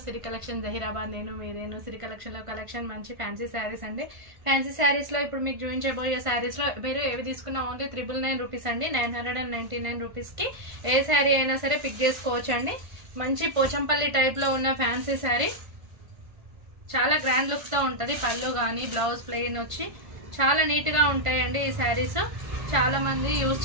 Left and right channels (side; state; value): left; late; 1.5 ms